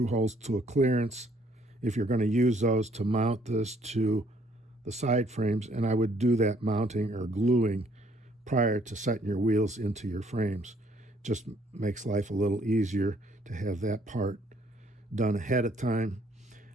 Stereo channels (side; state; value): both; normal; correlation 0.64